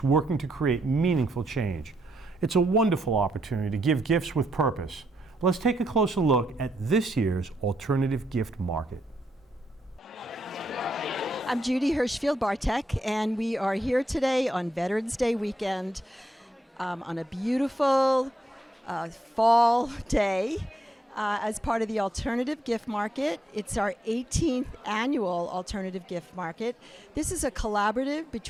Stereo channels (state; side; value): normal; both; correlation 0.79